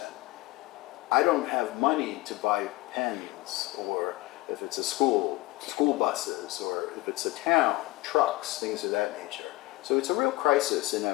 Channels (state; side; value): quieter; right; 20.3 dB